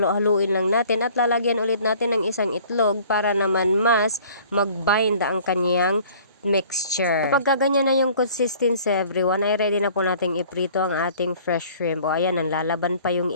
lang natin at lalagyan ulit natin ng isang itlog para naman mas mag-bind ang kanyang mixture. Kapag ganyan na yung consistency everyone, ay ready na po nating iprito ang ating fresh shrimp. O ayan, nanlalaban pa yung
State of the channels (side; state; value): both; inverted; correlation -0.51